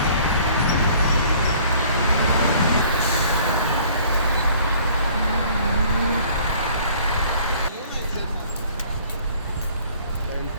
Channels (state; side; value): inverted; both; correlation -0.55